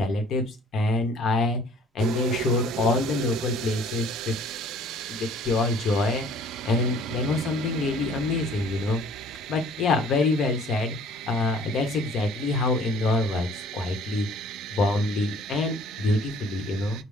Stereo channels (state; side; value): normal; both; correlation 0.54